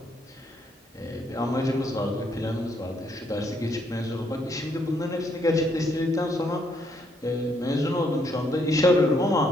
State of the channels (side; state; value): both; normal; correlation 0.72